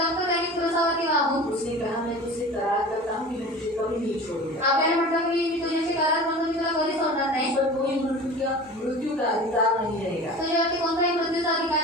त्याने क्रूसावरती वाहून उसने कहा मैं तुझसे करार करता हूँ कि मैं तुझे कभी नहीं छोड़ूंगा। आपल्याला म्हटलं की मी तुझ्याशी करार म्हणून मी तुला कधी सोडणार नाही. इस पर कोई मृत्यु का अधिकार नहीं रहेगा, तुझ्यावरती कोणताही मृत्यूचा अधिकार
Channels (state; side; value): normal; both; correlation 0.37